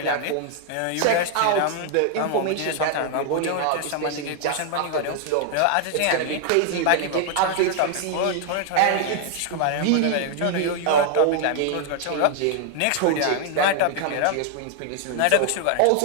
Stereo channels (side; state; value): both; different; correlation 0.00